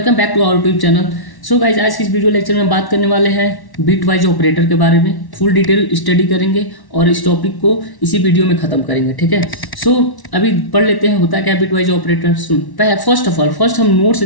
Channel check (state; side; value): late; right; 1.1 ms